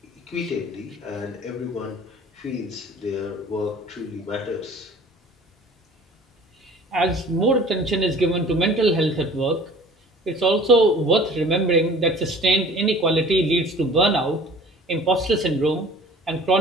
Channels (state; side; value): normal; both; correlation 0.47